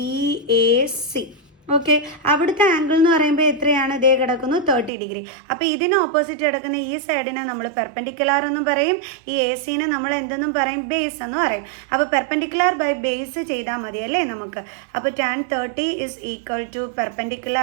A C. Okay, അവിടുത്തെ ആംഗിൾ എന്ന് പറയുമ്പോൾ എത്രയാണ്? ഇതേ കിടക്കുന്നു 30 ഡിഗ്രി. അപ്പോൾ ഇതിന് ഓപ്പോസിറ്റ് കിടക്കുന്ന ഈ സൈഡിനെ നമ്മൾ പെർപെൻഡിക്കുലർ എന്നും പറയും, ഈ എ സിനെ നമ്മൾ എന്തെന്നും പറയും? ബേസ് എന്ന് പറയും. അപ്പോൾ പെർപെൻഡിക്കുലർ ബൈ ബേസ് ചെയ്താൽ മതി അല്ലേ നമുക്ക്? അപ്പോൾ tan 30 is equal to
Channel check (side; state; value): left; drops out; at 4.9 s